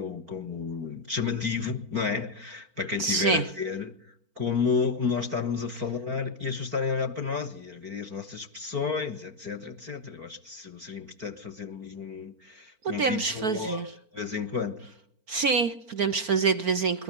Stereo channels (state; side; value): late; left; 4.4 ms